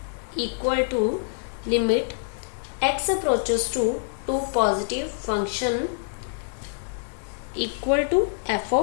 equal to limit x approaches to 2 positive function equal to f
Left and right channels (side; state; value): right; silent; 56 dB below the other